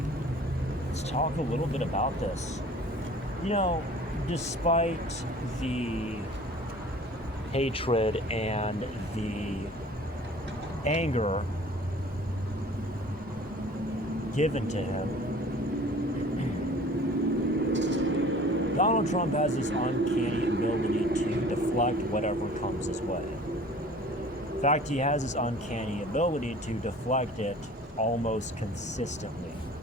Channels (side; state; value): both; normal; correlation 0.47